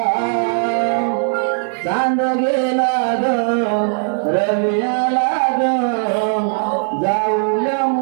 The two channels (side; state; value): left; silent; 60 dB below the other